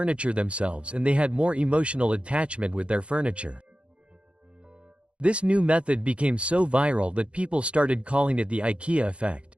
themselves and they had more emotional attachment with their furniture. This new method became so viral that people started calling it the IKEA effect.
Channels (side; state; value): left; late; 0.059 ms